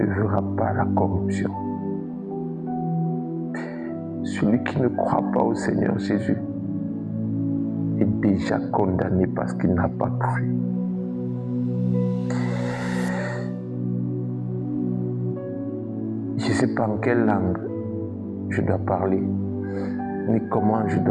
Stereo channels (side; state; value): both; identical; correlation 1.00